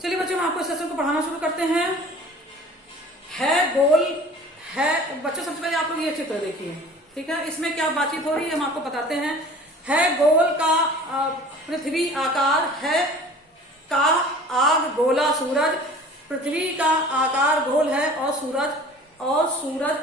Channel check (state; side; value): normal; both; correlation 0.45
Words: बच्चों हम आपको इस लेसन को पढ़ाना शुरू करते हैं। है गोल है बच्चों, सबसे पहले आप लोग ये चित्र देखिए, ठीक है। इसमें क्या बातचीत हो रही है हम आपको बताते हैं। है गोल का पृथ्वी आकार, है का आग गोला सूरज। पृथ्वी का आकार गोल है और सूरज